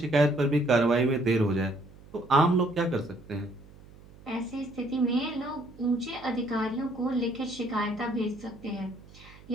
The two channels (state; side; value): noise; right; hum, 22 dB below the sound